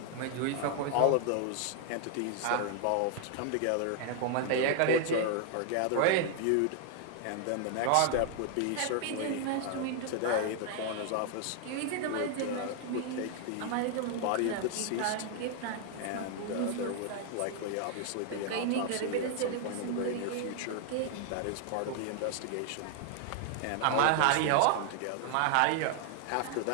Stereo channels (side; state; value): both; different; correlation 0.00